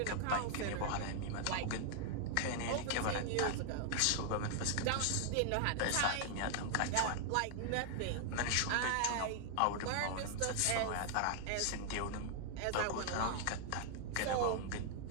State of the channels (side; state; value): both; different; correlation 0.00